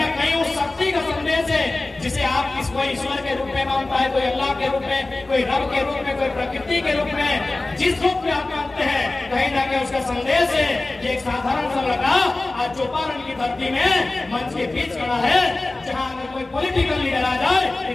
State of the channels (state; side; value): quieter; right; 3.0 dB